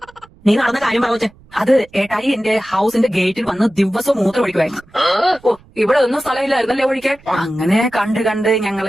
നീ നടന്ന കാര്യം പറ കൊച്ചേ. അത് ഏട്ടായി എന്റെ ഹൗസിന്റെ ഗേറ്റിൽ വന്ന് ദിവസവും മൂത്രം ഒഴിക്കുമായിരുന്നു. ഓ ഇവിടെ ഒന്നും സ്ഥലമില്ലായിരുന്നല്ലേ ഒഴിക്കാൻ? അങ്ങനെ കണ്ട്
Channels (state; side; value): noise; right; rumble, 27 dB below the sound